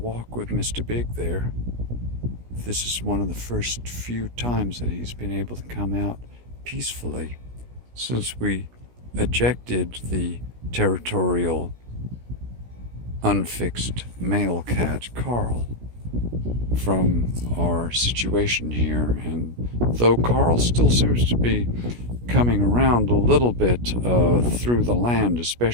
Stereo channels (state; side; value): late; left; 17 ms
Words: with Mr. Big there. This is one of the first few times that he's been able to come out peacefully since we ejected the territorial, unfixed male cat, Carl, from our situation here. And though Carl still seems to be coming around a little bit through the land,